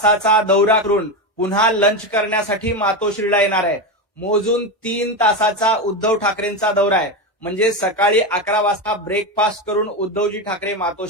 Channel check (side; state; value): both; normal; correlation 0.14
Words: दौरा करून पुन्हा लंच करण्यासाठी मातोश्रीला येणार आहे। मोजून 3 तासाचा उद्धव ठाकरेंचा दौरा आहे, म्हणजे सकाळी 11 वाजता ब्रेकफास्ट करून उद्धवजी ठाकरे